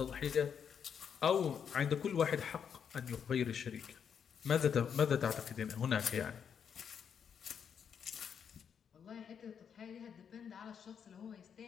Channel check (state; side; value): quieter; right; 7.5 dB